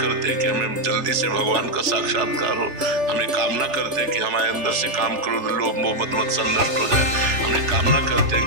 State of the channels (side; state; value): left; late; 3.4 ms